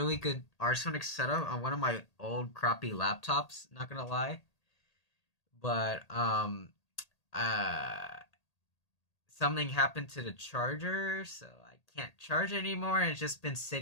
good Arch Linux setup on one of my old crappy laptops. Not gonna lie, but uh, something happened to the charger, so I can't charge anymore, and it's just been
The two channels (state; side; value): late; right; 1.8 ms